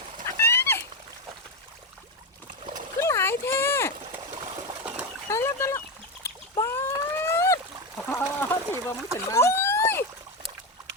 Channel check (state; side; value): normal; both; correlation 0.12